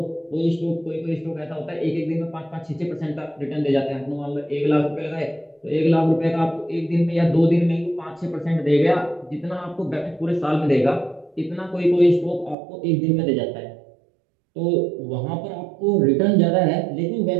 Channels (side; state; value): left; drops out; at 12.6 s